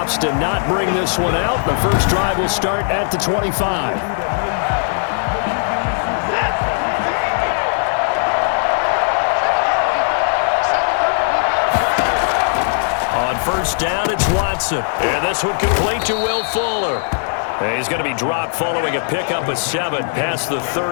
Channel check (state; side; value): silent; right; 67 dB below the other